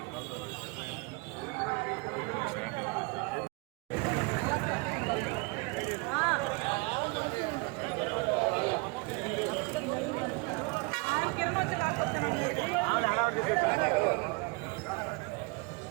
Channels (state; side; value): quieter; left; 28.1 dB